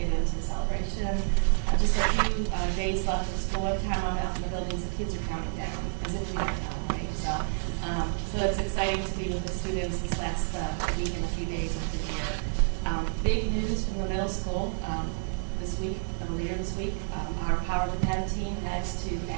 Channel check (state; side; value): silent; left; digital silence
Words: into the celebration. Just a few days left of school. Every time I'm out in the buildings, the kids are counting down, as if we don't know, right? So it's exciting to be with the students this last week and a few days of the year. Big news from the middle school this week, earlier this week. Our Power to 10 team heads to